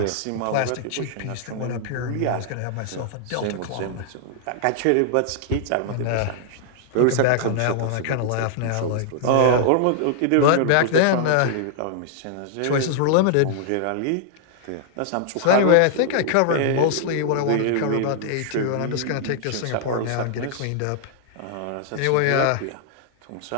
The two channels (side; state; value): both; different; correlation -0.01